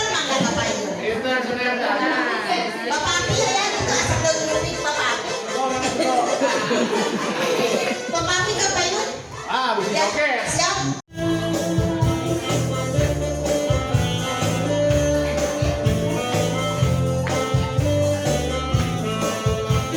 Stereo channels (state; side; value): identical; both; correlation 1.00